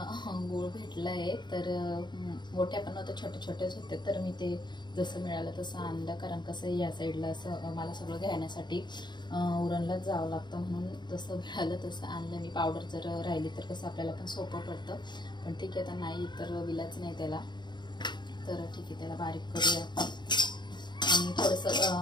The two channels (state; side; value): late; right; 0.21 ms